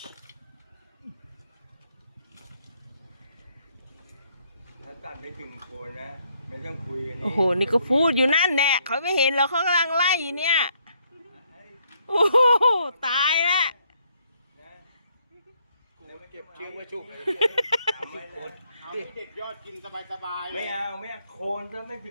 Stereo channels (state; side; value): inverted; both; correlation -0.70